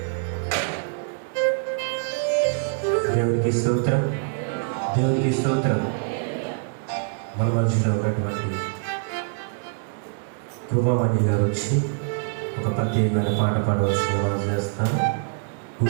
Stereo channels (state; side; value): silent; left; digital silence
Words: దేవునికి స్తోత్రం, దేవునికి స్తోత్రం. మన మధ్యలో ఉన్నటువంటి కృపామణి గారు వచ్చి ఒక ప్రత్యేకమైన పాట పాడవలసిన వారు చేస్తారు.